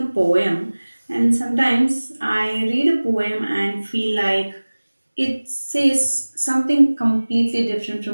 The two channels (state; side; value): inverted; both; correlation -1.00